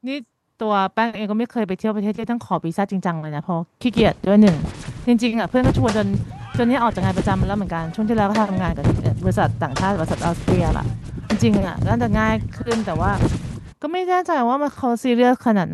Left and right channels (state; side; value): identical; both; correlation 1.00